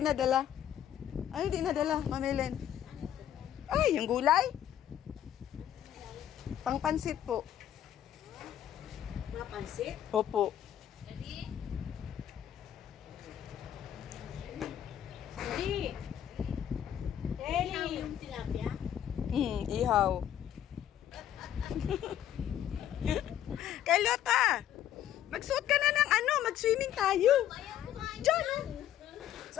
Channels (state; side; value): quieter; right; 10.8 dB